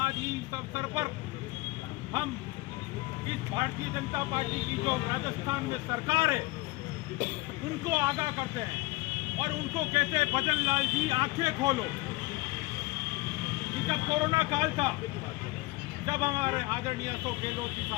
इस अवसर पर हम इस भारतीय जनता पार्टी की जो राजस्थान में सरकार है उनको आगाह करते हैं और उनको कहते हैं भजन लाल जी आंखें खोलो। जब कोरोना काल था, जब हमारे आदरणीय अशोक गहलोत जी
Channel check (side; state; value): right; quieter; 21.3 dB